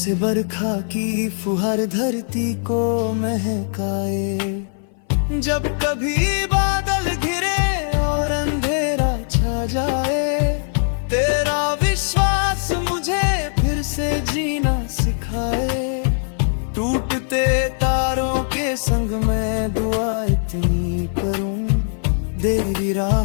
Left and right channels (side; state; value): right; silent; 57 dB below the other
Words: बरखा की फुहार धरती को महकाए। जब कभी बादल घिरे और अंधेरा छा जाए, तेरा विश्वास मुझे फिर से जीना सिखाए। टूटते तारों के संग मैं दुआ इतनी करूं, तेरी